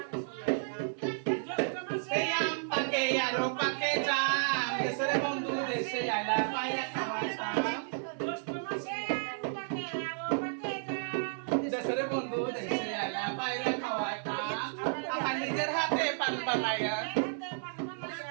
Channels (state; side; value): silent; left; digital silence